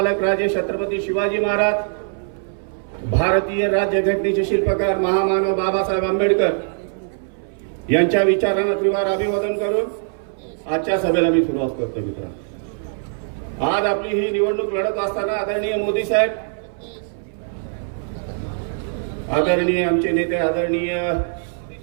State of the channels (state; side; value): silent; left; 62 dB below the other